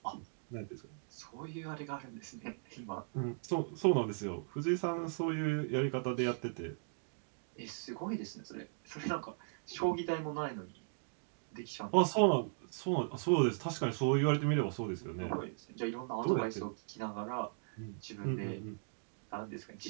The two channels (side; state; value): left; silent; digital silence